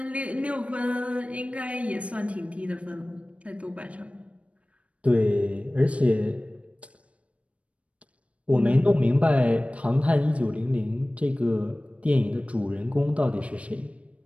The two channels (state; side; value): late; left; 0.063 ms